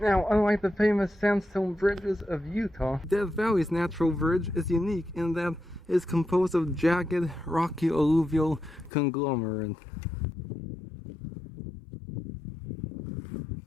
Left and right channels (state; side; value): drops out; right; at 8.9 s